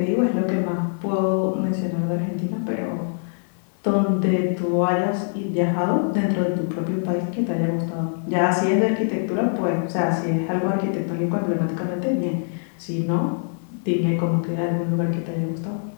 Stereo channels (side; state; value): right; silent; digital silence